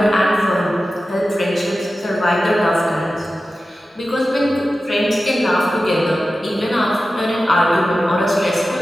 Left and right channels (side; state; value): both; normal; correlation 0.94